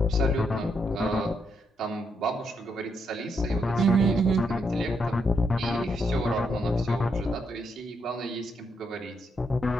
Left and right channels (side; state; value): both; normal; correlation 0.78